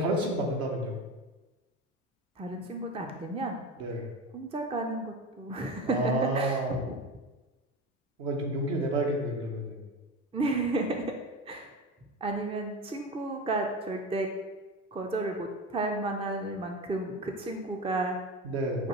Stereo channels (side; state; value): both; normal; correlation 0.26